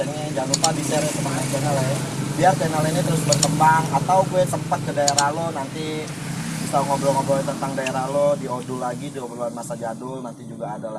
Jangan lupa di share teman main channel ya. Biar channel ini terus berkembang. Atau gue sempat ke daerah lo nanti bisa ngobrol-ngobrol tentang daerah lo di Odul lagi, di obrolan masa jadul nanti juga ada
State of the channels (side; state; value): both; identical; correlation 1.00